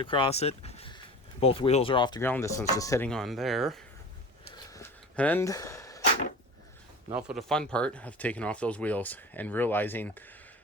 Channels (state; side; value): normal; both; correlation 0.35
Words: across it. Both wheels are off the ground. This one's just sitting on there. And now for the fun part of taking off those wheels and realizing